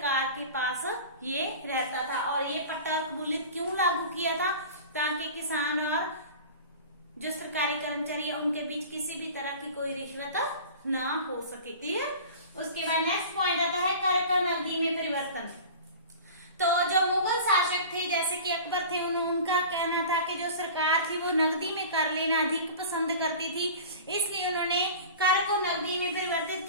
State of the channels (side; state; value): both; inverted; correlation -0.38